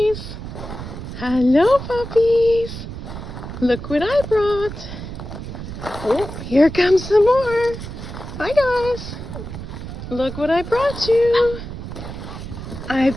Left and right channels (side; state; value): right; noise; rumble, 9 dB below the sound